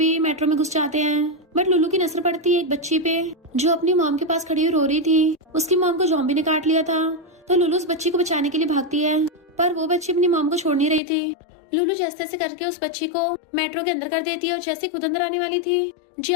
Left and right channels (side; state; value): right; drops out; at 11.0 s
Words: मेट्रो में घुस जाते हैं, बट लुलू की नजर पड़ती है एक बच्ची पे जो अपनी मॉम के पास खड़ी हुई रो रही थी। उसकी मॉम को जॉम्बी ने काट लिया था तो लुलू उस बच्ची को बचाने के लिए भागती है, पर वो बच्ची अपनी मॉम को छोड़ नहीं रही थी। लुलू जैसे तैसे करके उस बच्ची को मेट्रो के अंदर कर देती है और जैसे खुद अंदर आने वाली थी